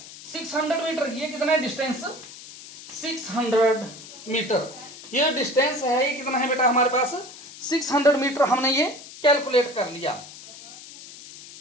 600 मीटर। ये कितना है डिस्टेंस? 600 मीटर। ये डिस्टेंस है ये कितना है बेटा हमारे पास? 600 मीटर हमने ये कैलकुलेट कर लिया।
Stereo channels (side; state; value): left; noise; hiss, 16 dB below the sound